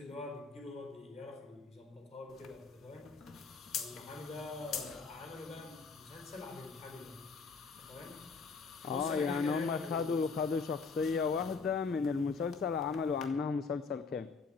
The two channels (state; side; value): quieter; right; 4.8 dB